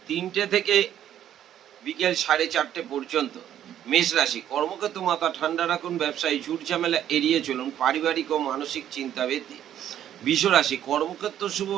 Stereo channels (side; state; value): left; quieter; 10.8 dB